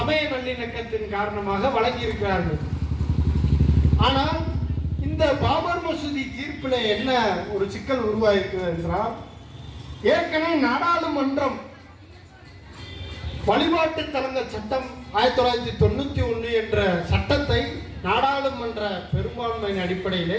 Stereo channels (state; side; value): identical; both; correlation 1.00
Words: நல்லிணக்கத்தின் காரணமாக வழங்கியிருக்கிறார்கள். ஆனால் இந்த பாபர் மசூதி தீர்ப்பில் என்ன ஒரு சிக்கல் உருவாயிருக்கிறது என்றால், ஏற்கனவே நாடாளுமன்றம் வழிபாட்டு தலங்கள் சட்டம் 1991 என்ற சட்டத்தை நாடாளுமன்ற பெரும்பான்மையின் அடிப்படையிலே